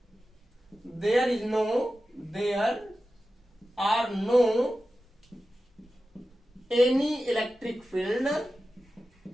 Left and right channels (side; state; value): both; normal; correlation 0.93